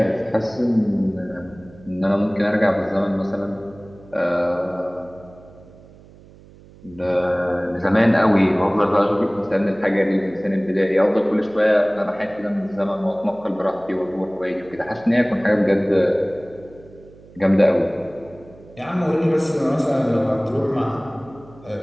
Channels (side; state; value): right; noise; hum, 23 dB below the sound